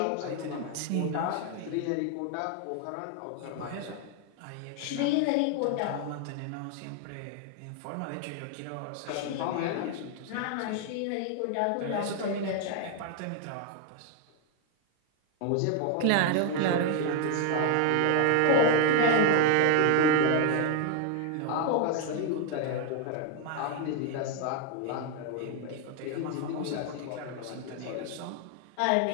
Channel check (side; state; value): both; different; correlation 0.00